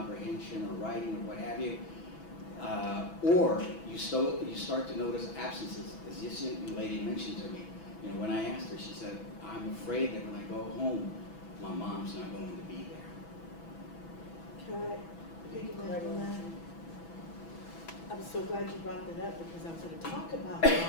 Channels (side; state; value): right; late; 6.1 ms